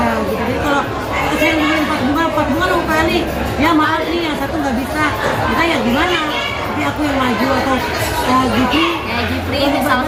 gitu. Jadi kalau saya ngomongin 4 bunga dong kali, ya maaf nih yang satu nggak bisa, kita ya gimana? Tapi aku yang maju atau Gifri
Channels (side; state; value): both; identical; correlation 1.00